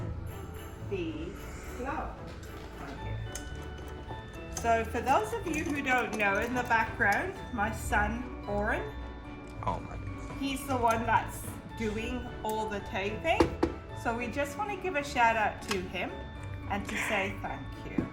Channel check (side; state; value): both; identical; correlation 1.00